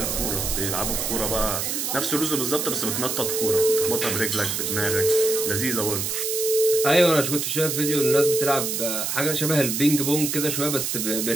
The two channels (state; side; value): noise; right; hiss, 1 dB below the sound